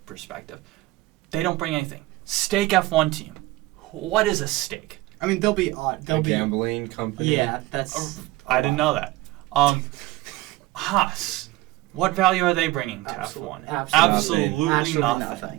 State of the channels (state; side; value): quieter; left; 18.9 dB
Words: perspective. They don't bring anything. Stake F1 team. What is a stake? I mean, they'll be odd. They'll be gambling company. Yeah, that's. I didn't know that. Haas. What value are they bringing to F1? Absolutely